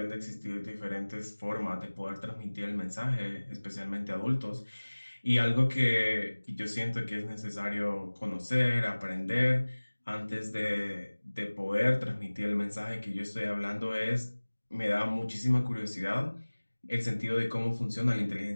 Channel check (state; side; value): inverted; both; correlation -1.00